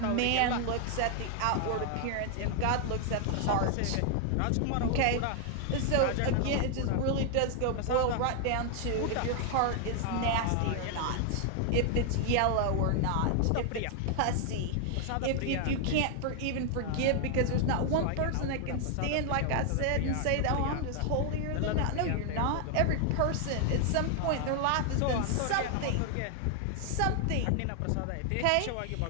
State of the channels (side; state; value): both; different; correlation 0.00